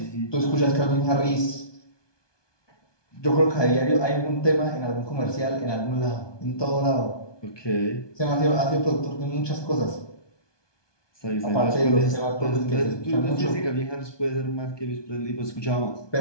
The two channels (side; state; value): right; late; 1.2 ms